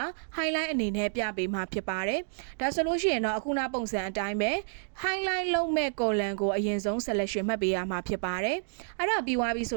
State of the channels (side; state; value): left; silent; digital silence